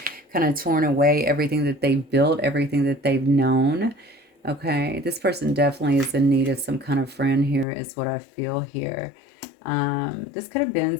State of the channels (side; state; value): right; drops out; at 7.7 s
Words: kind of torn away, everything that they've built, everything that they've known. Okay, this person definitely is in need of some kind of friend here, is what I feel here. This could have been